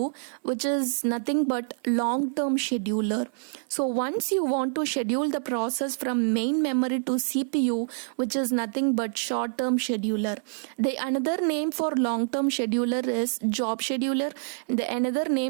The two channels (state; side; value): silent; left; 60 dB below the other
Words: which is nothing but long term scheduler. So once you want to schedule the process from main memory to CPU, which is nothing but short term scheduler. The another name for long term scheduler is job scheduler. The another